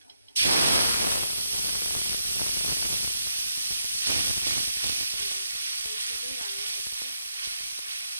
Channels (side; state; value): both; inverted; correlation -0.79